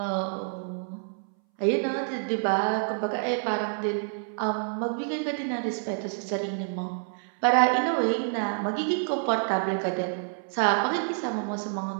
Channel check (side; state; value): left; silent; 59 dB below the other